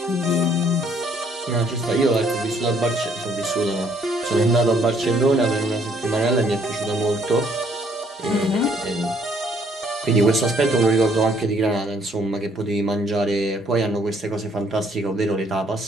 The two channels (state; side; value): normal; both; correlation 0.65